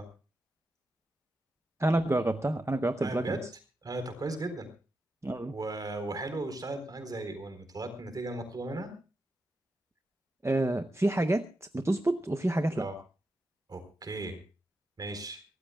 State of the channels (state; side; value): normal; both; correlation 0.87